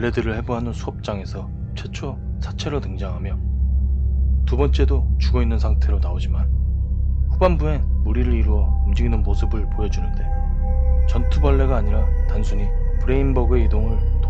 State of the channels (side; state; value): both; identical; correlation 1.00